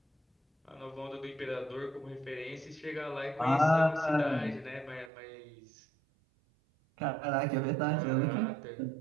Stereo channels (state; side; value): drops out; left; at 5.1 s